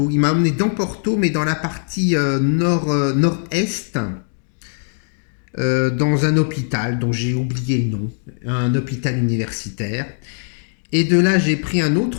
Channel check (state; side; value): silent; right; digital silence